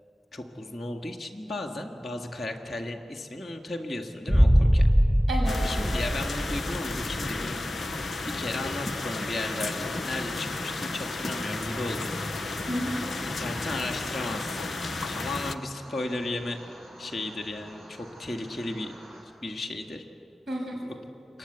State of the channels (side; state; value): both; normal; correlation 0.94